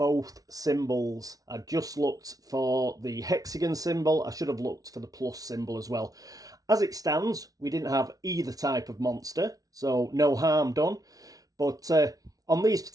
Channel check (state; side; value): late; left; 0.18 ms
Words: symbols. I just looked for the hexagon symbol. I should have looked for the plus symbol as well. As it stands, we didn't have either type of monster, so no harm done. But on these